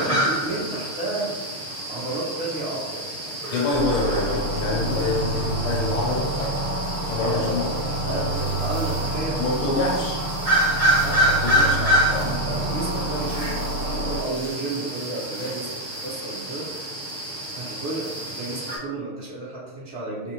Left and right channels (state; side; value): late; right; 6.4 ms